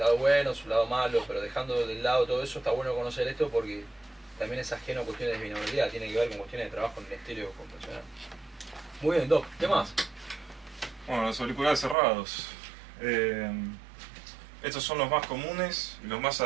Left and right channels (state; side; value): drops out; left; at 12.0 s